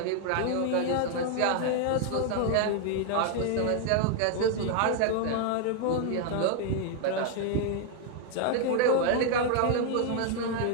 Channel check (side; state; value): both; different; correlation 0.00